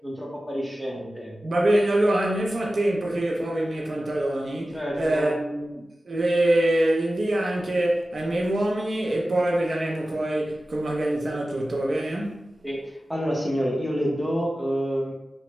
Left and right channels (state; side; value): normal; both; correlation 0.95